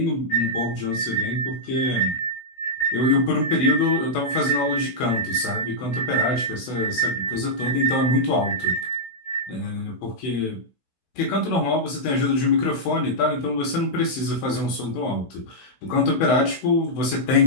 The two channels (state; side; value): late; right; 16 ms